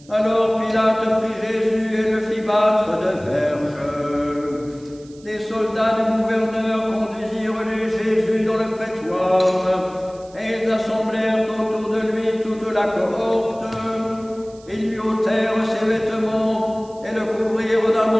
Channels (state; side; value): noise; right; hiss, 26 dB below the sound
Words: Alors Pilate prit Jésus et le fit battre de verges. Les soldats du gouverneur conduisirent Jésus dans le prétoire, et ils assemblèrent autour de lui toute la cohorte. Ils lui ôtèrent ses vêtements et le couvrirent d'un